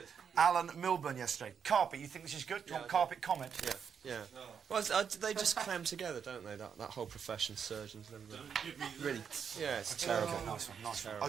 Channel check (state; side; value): quieter; left; 7.2 dB